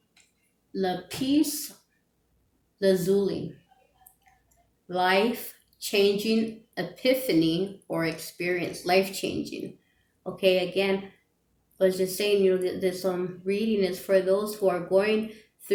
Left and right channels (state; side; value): identical; both; correlation 1.00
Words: Lapis lazuli, life-changing epiphany or experience, life-changing. Okay, again, I was just saying, this reading is for those who are going